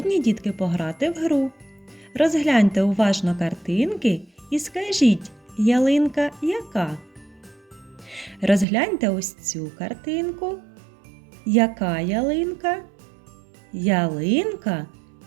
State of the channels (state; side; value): drops out; left; at 8.7 s